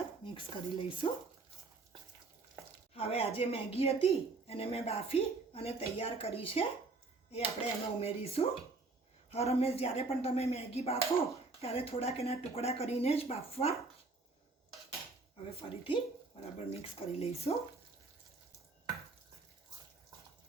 મિક્સ કરી લઈશું। હવે આ જે મેગી હતી એને મેં બાફી અને તૈયાર કરી છે એ આપણે એમાં ઉમેરીશું। હર હંમેશ જ્યારે પણ તમે મેગી બાફો ત્યારે થોડાક એના ટુકડા કરીને જ બાફવા। હવે ફરીથી બરાબર મિક્સ કરી લઈશું।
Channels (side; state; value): left; quieter; 3.8 dB